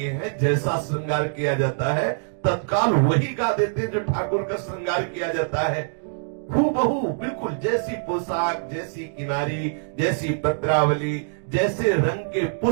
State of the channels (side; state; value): left; silent; digital silence